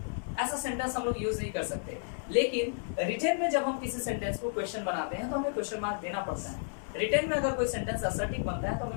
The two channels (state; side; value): silent; right; 56 dB below the other